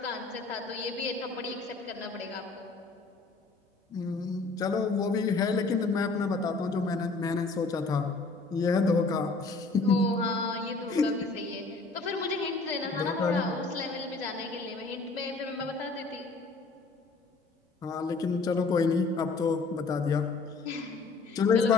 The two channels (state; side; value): quieter; right; 3.9 dB